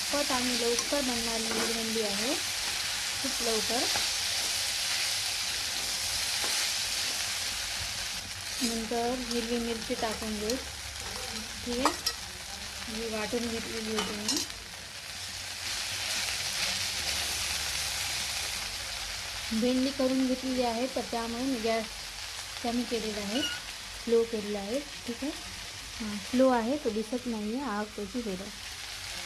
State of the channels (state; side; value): identical; both; correlation 1.00